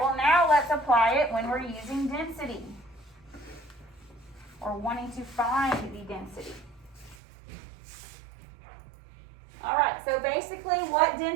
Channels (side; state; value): left; drops out; at 7.2 s